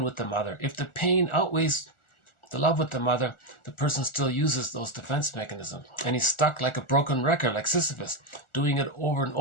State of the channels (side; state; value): right; late; 1.4 ms